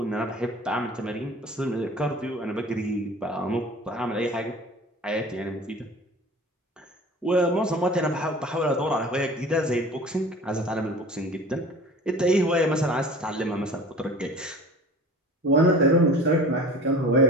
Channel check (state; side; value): normal; both; correlation 0.42